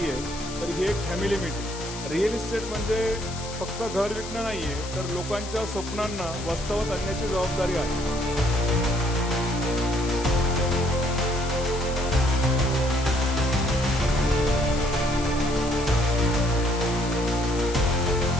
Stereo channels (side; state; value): left; noise; hiss, 12 dB below the sound